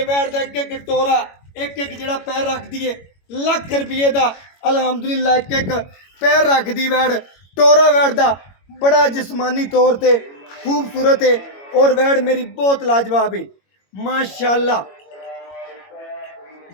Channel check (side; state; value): right; late; 21 ms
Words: वैड का एक एक टोरा, एक एक जड़ा पैर रख दी है लख रुपये का। अलहमदुलिल्लाह एक एक पैर रख दी वैड, टोरा वैड का बड़ा जिस्मानी तौर पर खूबसूरत है और वैड मेरी बहुत लाजवाब है माशाल्लाह।